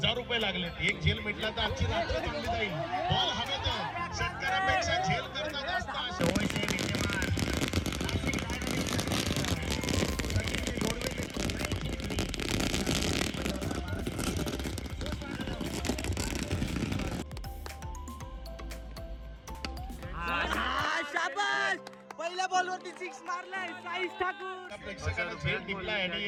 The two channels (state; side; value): identical; both; correlation 1.00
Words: लागले. एक झेल मिटला तर आजची रात्र चांगली जाईल. बॉल हवेत, शेतकऱ्यापेक्षा झेल करणं जास्त आहे. शाबास, पहिल्या बॉलवरती 6 मारलाय साईश ठाकूर. प्रेक्षकांना झेल टिपला आणि